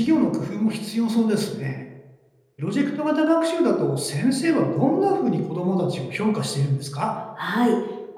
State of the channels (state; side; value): identical; both; correlation 1.00